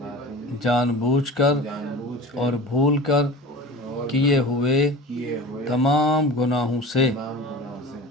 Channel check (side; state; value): both; normal; correlation 0.36